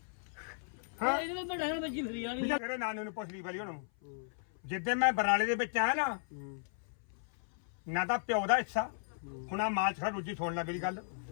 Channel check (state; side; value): silent; right; 54 dB below the other